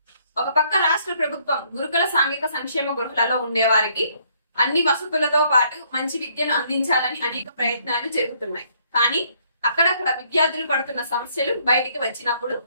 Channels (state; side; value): inverted; both; correlation -0.67